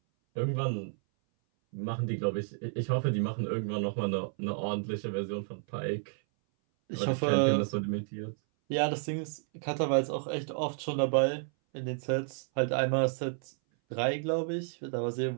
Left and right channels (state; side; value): silent; left; 57 dB below the other